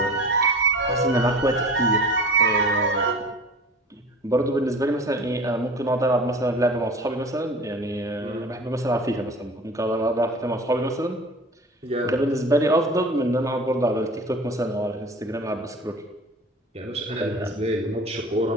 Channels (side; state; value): both; normal; correlation 0.39